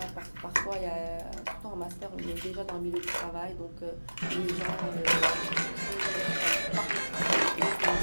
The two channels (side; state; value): both; inverted; correlation -1.00